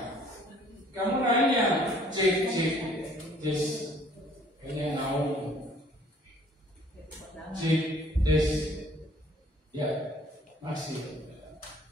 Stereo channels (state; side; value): normal; both; correlation 0.57